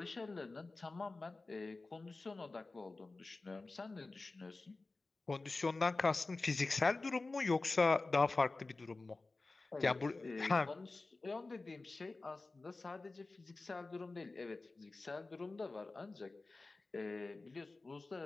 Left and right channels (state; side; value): quieter; right; 3.4 dB